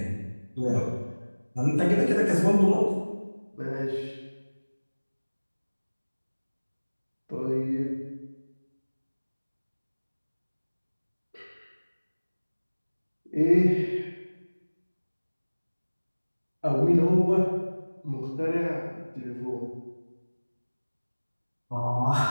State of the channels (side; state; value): both; inverted; correlation -1.00